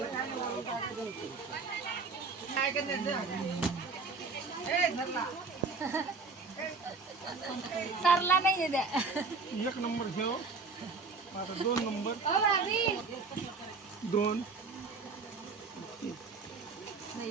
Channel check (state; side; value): quieter; left; 4.4 dB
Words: सरला नाही द्या. 1 नंबर घेऊ आता 2 नंबर 2